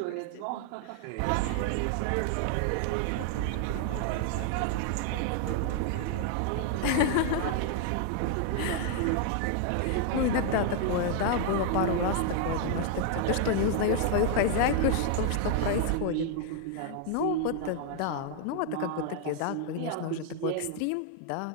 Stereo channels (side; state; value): both; different; correlation 0.00